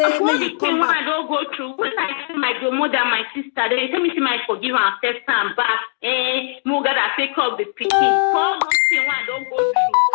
may you come back. I don't go through. When I see my grandmother, my sister, they tell me, say, may I forgive her and accept her back. Moga that take up the picking. For those things I don't go through.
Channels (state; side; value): silent; right; digital silence